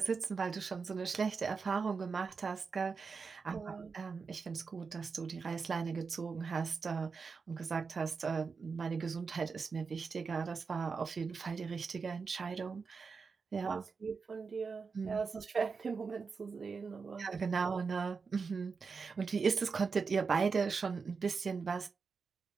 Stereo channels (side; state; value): left; quieter; 5.1 dB